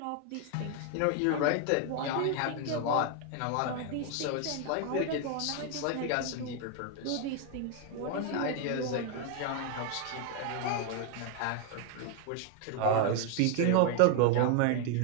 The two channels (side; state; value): both; different; correlation 0.01